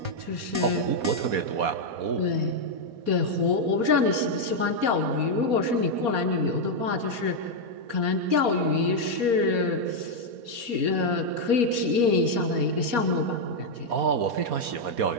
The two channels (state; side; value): late; left; 4.2 ms